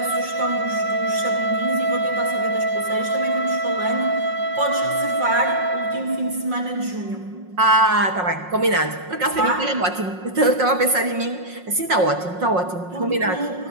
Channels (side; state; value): left; late; 5.5 ms